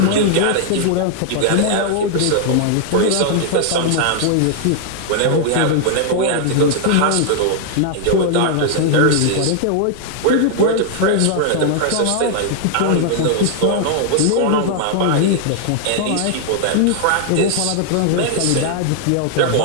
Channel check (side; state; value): both; different; correlation 0.00